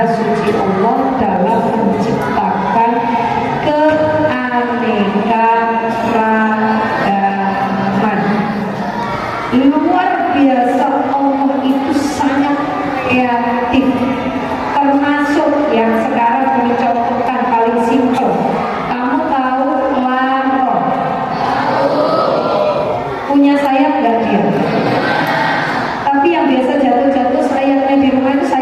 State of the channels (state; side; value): identical; both; correlation 1.00